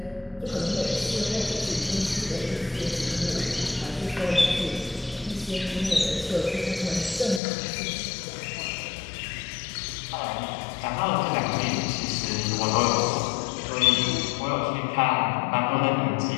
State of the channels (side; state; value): right; drops out; at 7.4 s